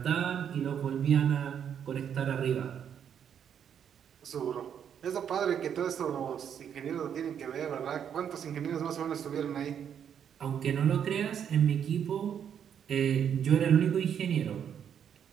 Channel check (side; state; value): left; quieter; 8.5 dB